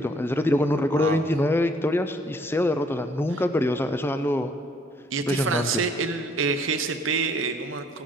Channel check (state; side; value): normal; both; correlation 0.62